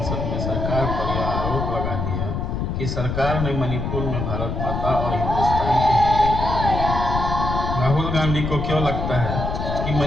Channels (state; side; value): noise; left; rumble, 2 dB below the sound